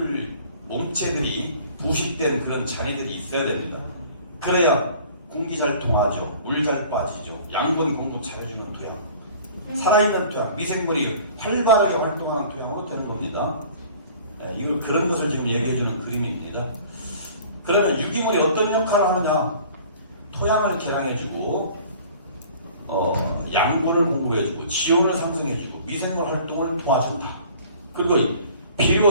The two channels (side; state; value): both; inverted; correlation -0.48